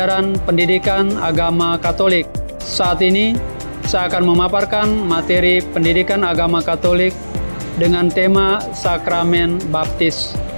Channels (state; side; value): inverted; both; correlation -1.00